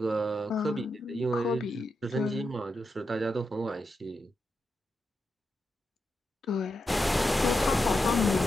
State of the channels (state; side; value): normal; both; correlation 0.86